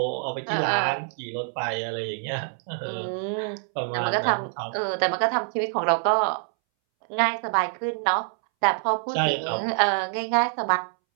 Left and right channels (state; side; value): silent; left; 61 dB below the other